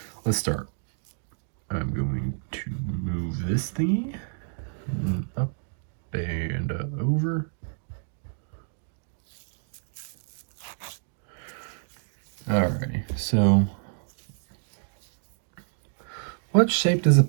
let's start. I'm going to move this thingy up and over. Alrighty, so what shape does a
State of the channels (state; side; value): silent; left; digital silence